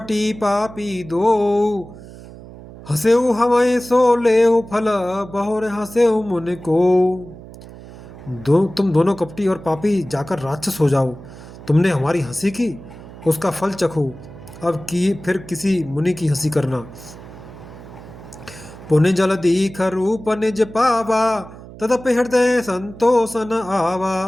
पापी दो, हंसेऊ हमें सो लेऊ फल, बहुर हंसेऊ मुनि को। तुम दोनों कपटी और पापी जाकर राक्षस हो जाओ। तुमने हमारी हंसी की, उसका फल चखो। अब फिर किसी मुनि की हंसी करना। पुण्य जल दीख रूप निज पावा, तदपि हृदय संतोष न आवा,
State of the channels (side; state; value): right; noise; hum, 17 dB below the sound